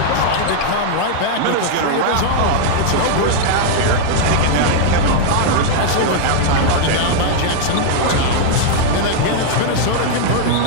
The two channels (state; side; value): different; both; correlation 0.00